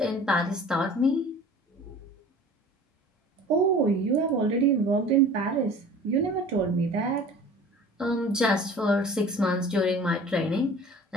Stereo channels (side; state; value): both; normal; correlation 0.43